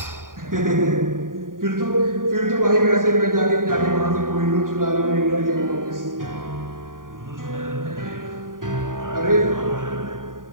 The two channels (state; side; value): late; left; 0.90 ms